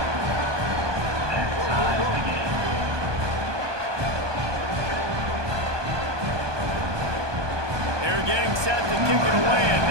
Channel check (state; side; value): late; left; 1.2 ms